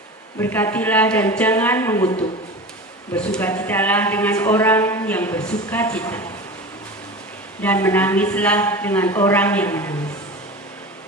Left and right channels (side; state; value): both; normal; correlation 0.31